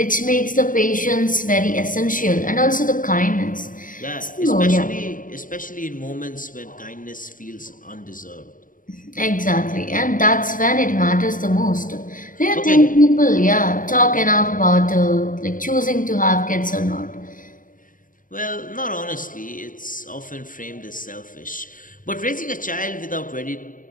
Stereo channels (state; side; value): late; right; 0.39 ms